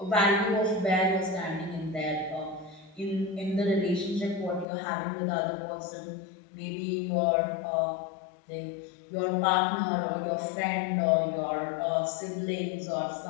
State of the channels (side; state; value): right; drops out; at 4.7 s